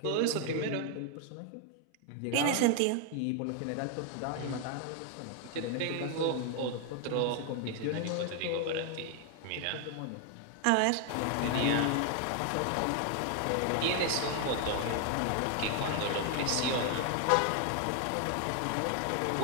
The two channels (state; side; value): different; both; correlation 0.00